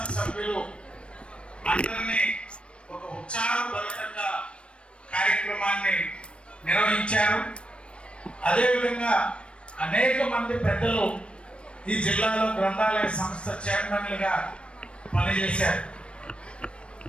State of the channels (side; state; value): right; late; 0.059 ms